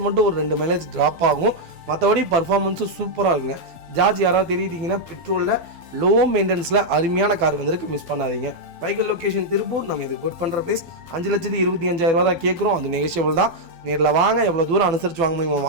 மட்டும் ஒரு 2 மைலேஜ் ட்ராப் ஆகும். மற்றபடி பர்ஃபார்மன்ஸும் சூப்பராக இருக்குங்க. ஜார்ஜ் யாராவது தெரியிட்டீங்கன்னா பெட்ரோலில் லோ மெயின்டெனன்ஸில் அருமையான கார் வந்திருக்கு, மிஸ் பண்ணாதீங்க. வைக்கல் லொக்கேஷன் திருப்பூர். நம்ம இது கோட் பண்ணுற ப்ரைஸ் 5,25,000 தான் கேட்குறோம். அது நெகோஷியபிள் தான். நேரில் வாங்க, எவ்வளோ தூரம் அனுசரித்து வாங்க முடியுமோ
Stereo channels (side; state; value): left; late; 12 ms